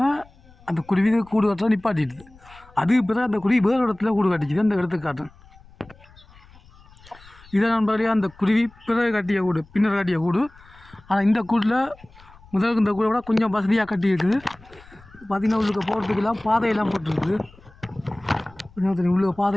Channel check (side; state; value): left; noise; rumble, 25 dB below the sound